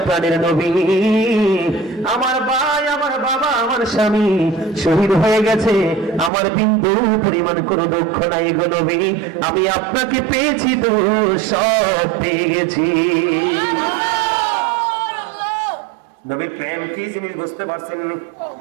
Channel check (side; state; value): left; drops out; at 6.3 s